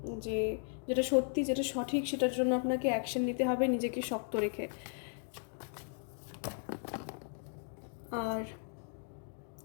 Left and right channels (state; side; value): silent; right; 54 dB below the other